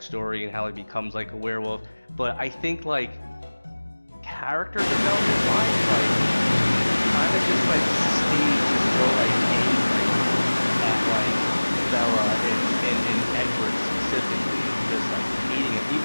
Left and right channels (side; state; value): both; inverted; correlation -1.00